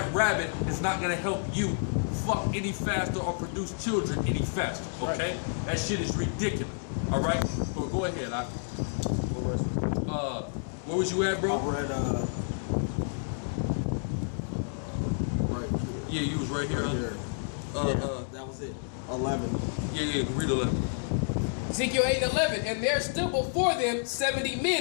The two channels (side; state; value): right; silent; digital silence